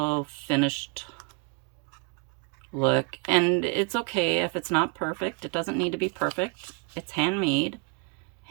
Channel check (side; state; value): left; quieter; 33.3 dB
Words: finished look. And it's okay if it's not perfect. It doesn't need to be perfect. It's handmade.